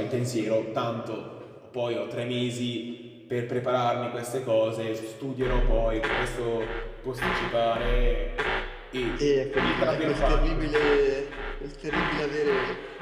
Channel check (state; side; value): identical; both; correlation 1.00